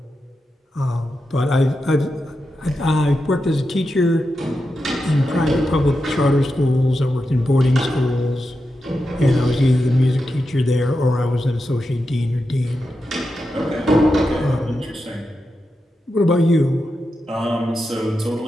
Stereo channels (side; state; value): both; normal; correlation 0.89